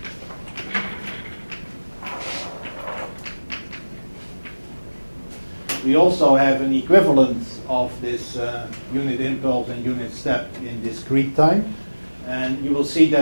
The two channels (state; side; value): inverted; both; correlation -1.00